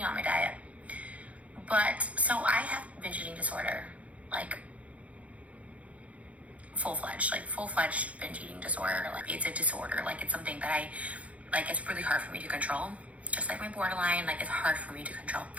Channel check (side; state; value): left; late; 0.066 ms